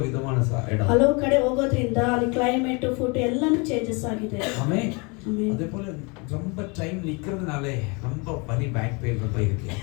விதமான இடம். ಹಲವು ಕಡೆ ಹೋಗೋದ್ರಿಂದ ಅಲ್ಲಿ ಕ್ಲೈಮೇಟ್, ಫುಡ್ ಎಲ್ಲಾನು ಚೇಂಜಸ್ ಆಗಿದೆ. ஆமென். அதே போல ரொம்ப டைம் நிக்கிறதுனாலே ரொம்ப வலி, பேக் பெயின் ரொம்ப இருக்கு.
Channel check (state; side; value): quieter; right; 30.4 dB